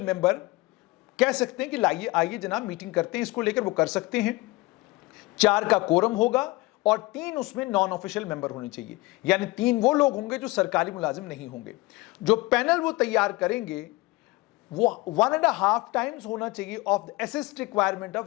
मेंबर कह सकते हैं कि लाइए आइए जनाब मीटिंग करते हैं, इसको लेकर वो कर सकते हैं। 4 का कोरम होगा और 3 उसमें नॉन ऑफिशियल मेंबर होने चाहिए, यानी 3 वो लोग होंगे जो सरकारी मुलाजिम नहीं होंगे। जो पैनल वो तैयार करेंगे वो 1.5 टाइम्स होना चाहिए of the assessed requirement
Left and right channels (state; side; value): quieter; right; 21.5 dB